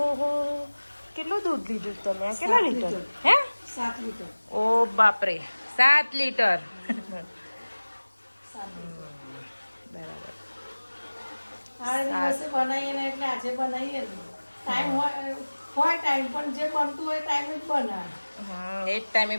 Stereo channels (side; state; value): both; inverted; correlation -1.00